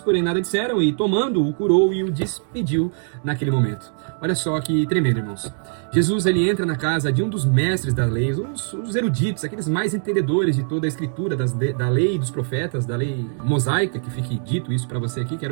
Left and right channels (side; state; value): left; silent; 63 dB below the other